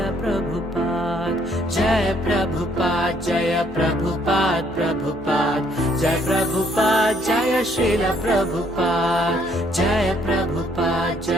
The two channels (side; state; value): right; noise; hum, 20 dB below the sound